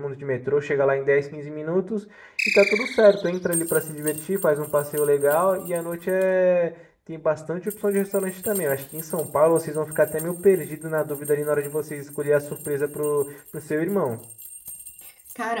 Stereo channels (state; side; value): identical; both; correlation 1.00